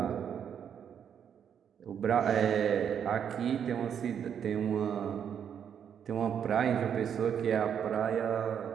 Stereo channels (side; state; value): left; quieter; 8.3 dB